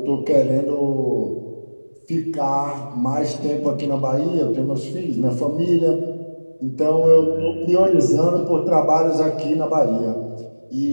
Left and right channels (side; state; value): both; inverted; correlation -1.00